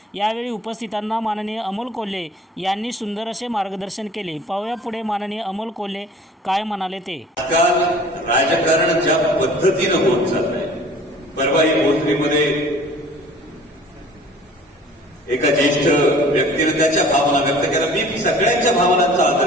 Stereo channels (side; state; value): both; normal; correlation 0.48